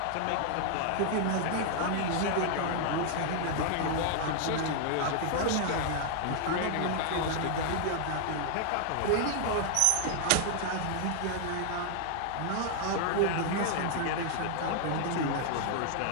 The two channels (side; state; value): both; different; correlation 0.00